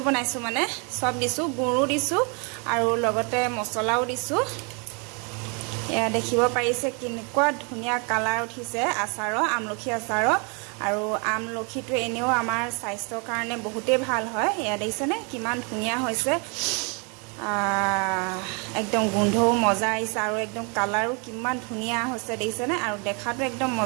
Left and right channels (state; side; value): quieter; left; 34.4 dB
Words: बनाइছো माने सब दिसु गुरु दिसु आरो लगते मसलाও दिसु या देखिबो पाइसे किनकुआ धुनिया कालार उठिसे आचार आमलखी आचार आरो आमलखीটো এনেও আমাৰ স্বাস্থ্যৰ কাৰণে বহুতে ভাল হয় या দেখিছেনে কিমান ধুনিয়া হৈছে एकदम गुंधो मजा आइसे और एकदम कलर किमान धुनिया होइसे देइसेने और देखातो एकदम